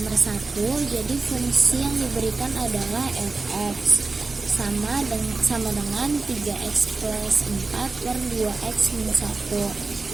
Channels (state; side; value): quieter; left; 3.8 dB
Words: 1, jadi fungsi yang diberikan adalah fx sama dengan 3x plus 4 per 2x minus 1.